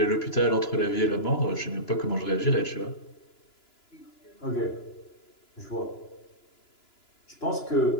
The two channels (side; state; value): right; late; 2.9 ms